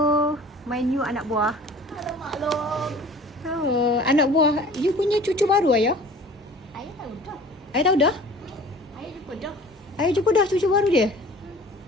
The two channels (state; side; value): normal; both; correlation 0.45